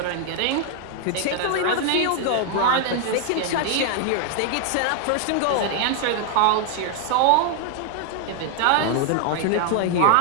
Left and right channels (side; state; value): both; different; correlation 0.00